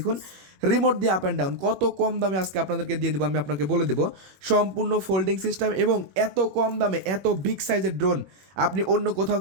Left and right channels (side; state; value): left; late; 21 ms